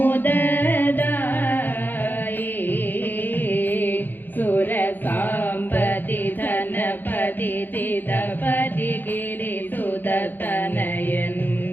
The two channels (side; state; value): right; late; 0.090 ms